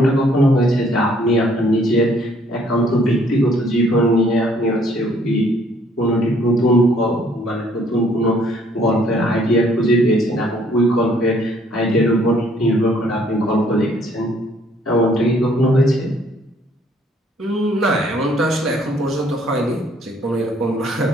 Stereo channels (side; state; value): both; normal; correlation 0.63